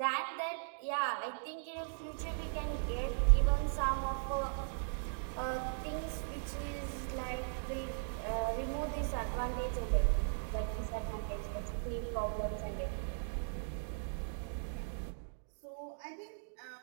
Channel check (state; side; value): silent; left; digital silence